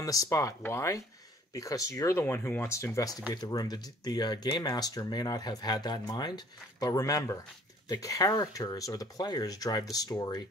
the spot. Why? Because you're the one who wants to investigate the room. The game master may not have had that in mind, but remember, the characters or the players drive the story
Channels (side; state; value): both; normal; correlation 0.54